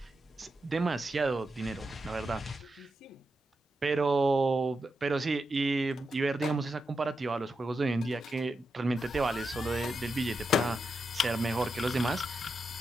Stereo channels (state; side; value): normal; both; correlation 0.87